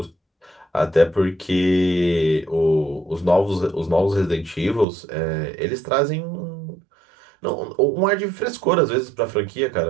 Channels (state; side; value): drops out; left; at 4.9 s